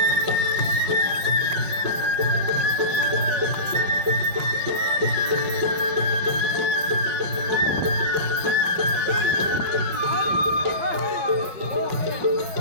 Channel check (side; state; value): left; late; 5.3 ms